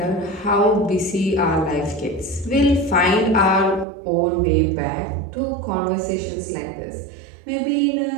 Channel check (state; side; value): drops out; left; at 3.9 s